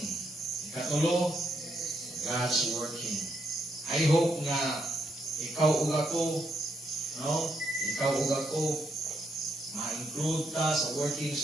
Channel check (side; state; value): both; normal; correlation 0.77